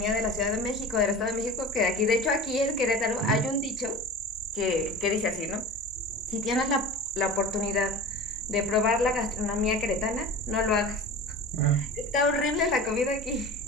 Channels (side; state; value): both; normal; correlation 0.34